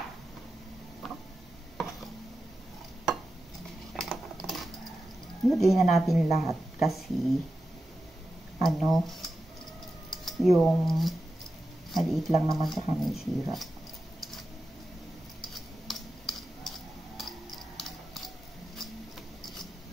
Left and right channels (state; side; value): normal; both; correlation 0.91